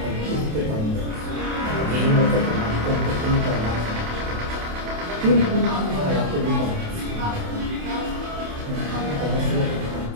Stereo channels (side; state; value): left; late; 28 ms